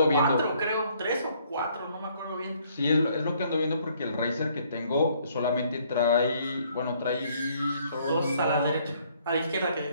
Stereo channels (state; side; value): inverted; both; correlation -0.65